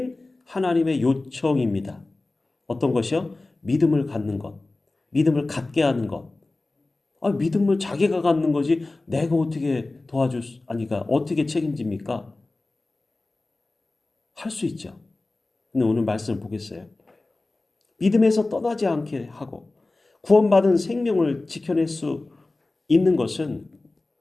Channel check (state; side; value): quieter; right; 3.1 dB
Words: 하나님의 요청입니다. 어떤 것이요? 믿음을 갖는 것. 믿음을 갖게 하는 것. 믿음을 자기가 갖는 거지 내가 어떻게 아니까 어떻게 책임집니까? 할 수 있죠. 근데 오늘 말씀을 보겠어요. 믿음에서 떠나지 않게 하고 구원받은 생명을 지켜낼 수 있는 것은